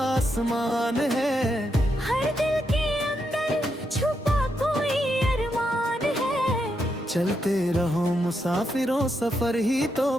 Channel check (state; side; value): normal; both; correlation 0.82